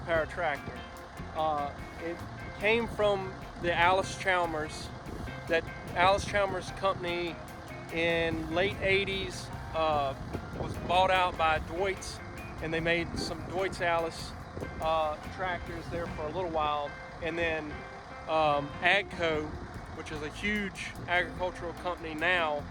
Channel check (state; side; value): identical; both; correlation 1.00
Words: tractor. It came from the Alice Chalmers. That Alice Chalmers company in late 80s was bought out by Deutz, and they made some Deutz Alice tractors there for a little while, and then AGCO, which is a huge agricultural company now,